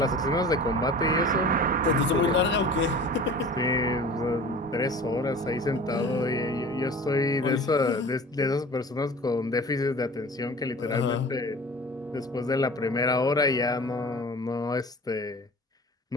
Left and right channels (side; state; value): both; normal; correlation 0.40